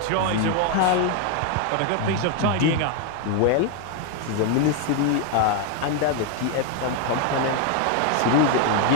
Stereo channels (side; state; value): both; different; correlation 0.01